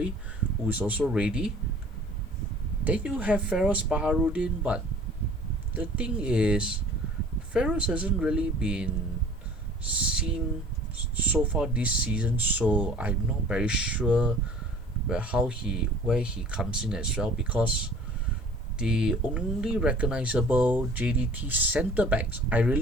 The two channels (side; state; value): both; normal; correlation 0.49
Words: who is also ready. Then you have Feroz Baharudin, but the thing is, Feroz hasn't really been seen so far this season, so I'm not very sure where he comes in as well, because the only recognizable JDT centre backs,